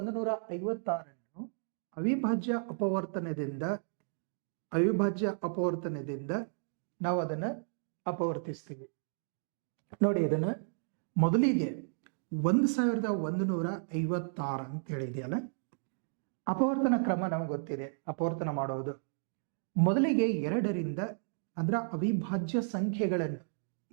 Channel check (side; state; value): left; silent; digital silence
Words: ಅವಿಭಾಜ್ಯ ಅಪವರ್ತನದಿಂದ ನಾವು ಅದನ್ನ ಅಪವರ್ತಿಸ್ತೀವಿ. ನೋಡಿ, ಇದನ್ನ ಮೊದಲಿಗೆ 1156 ಅಂತ ಹೇಳಿದೆಯಲ್ಲ, ಅಪವರ್ತನ ಕ್ರಮ ನಮ್ಗೆ ಗೊತ್ತಿದೆ. ಅಪವರ್ತನ ಮಾಡೋದು ಮೊದಲಿಗೆ 2ರಿಂದ ಅಂದ್ರೆ ಅವಿಭಾಜ್ಯ ಸಂಖ್ಯೆಗಳನ್ನು,